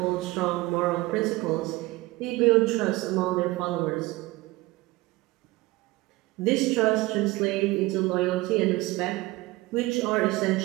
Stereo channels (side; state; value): left; quieter; 20.3 dB